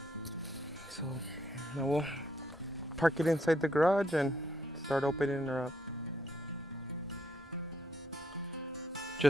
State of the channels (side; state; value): both; normal; correlation 0.73